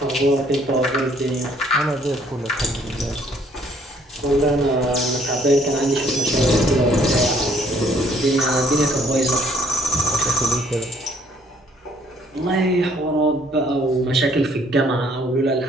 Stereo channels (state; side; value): normal; both; correlation 0.63